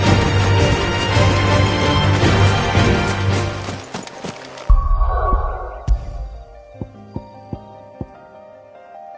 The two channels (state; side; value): identical; both; correlation 1.00